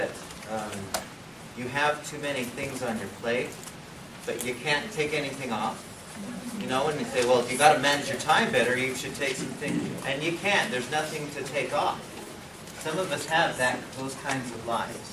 you have too many things on your plate, but you can't take anything off? You know, and you say, well, if you got to manage your time better, you should take some things, and you can't. There's nothing to take off. Some of us have those kinds of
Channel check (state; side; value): identical; both; correlation 1.00